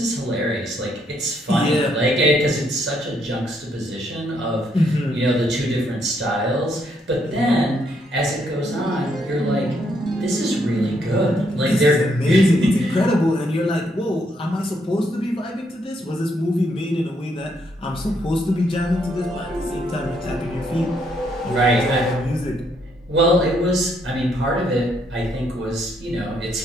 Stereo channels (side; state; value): both; normal; correlation 0.73